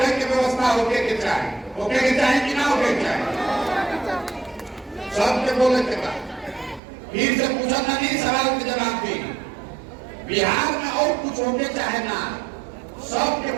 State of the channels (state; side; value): drops out; left; at 6.8 s